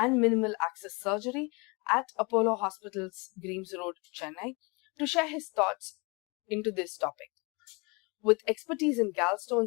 Minimal Access Surgery at Apollo Hospital's Greams Road, Chennai, to share his thoughts into this topic. With expertise in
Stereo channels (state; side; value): quieter; right; 29.1 dB